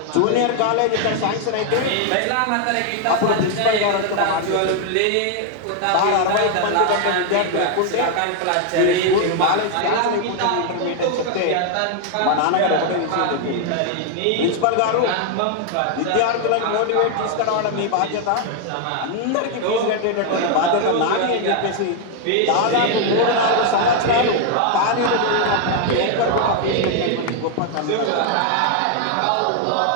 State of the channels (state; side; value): different; both; correlation 0.00